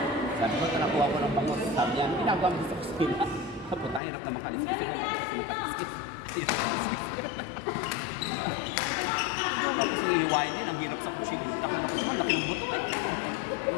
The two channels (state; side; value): drops out; right; at 4.0 s